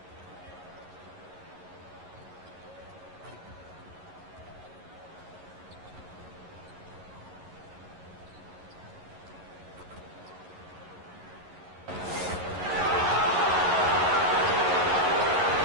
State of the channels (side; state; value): left; late; 11 ms